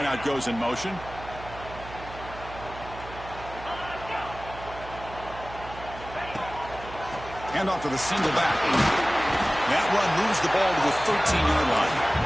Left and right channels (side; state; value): right; noise; hum, 14 dB below the sound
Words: goes in motion. Hand off to the single back. That run moves the ball to the 13-yard line.